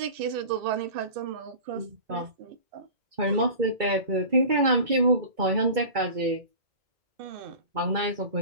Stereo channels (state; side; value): late; left; 2.2 ms